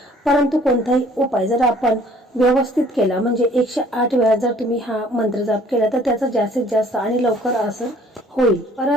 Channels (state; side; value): normal; both; correlation 0.56